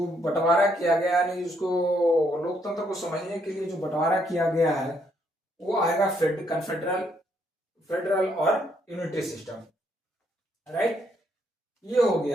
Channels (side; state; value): both; normal; correlation 0.72